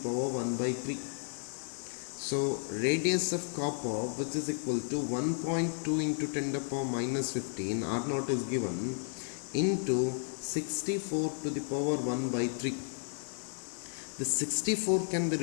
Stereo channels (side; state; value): right; silent; 56 dB below the other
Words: 1 by 3. So radius of copper, which is equal to 1.2 into 10 to the power minus 15, R naught is given, into 64 to the power 1 by 3. The 64 can be